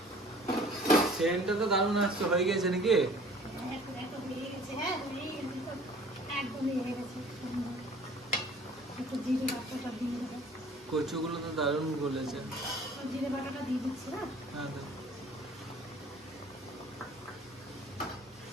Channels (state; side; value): normal; both; correlation 0.50